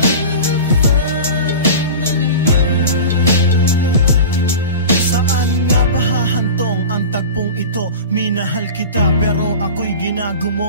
Ito, minahal kita pero ako'y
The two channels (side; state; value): both; inverted; correlation -0.32